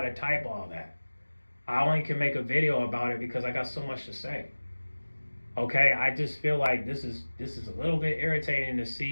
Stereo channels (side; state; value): both; inverted; correlation -1.00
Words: type all that. I only can make a video about it because I got so much to say. Okay, I just feel like this is a little bit irritating to